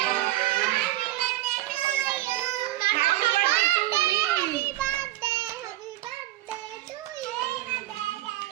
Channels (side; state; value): left; quieter; 15.8 dB